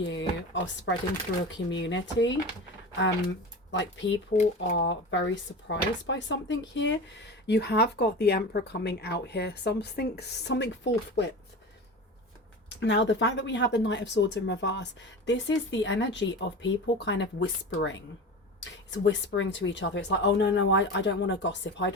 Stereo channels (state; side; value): normal; both; correlation 0.30